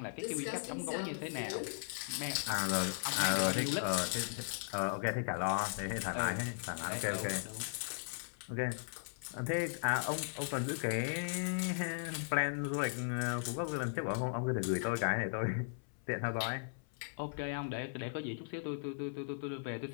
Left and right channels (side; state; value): right; silent; 53 dB below the other